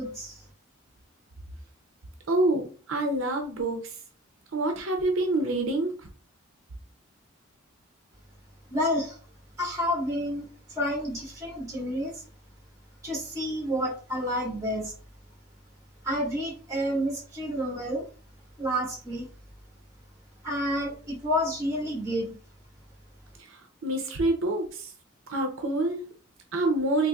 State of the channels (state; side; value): normal; both; correlation 0.40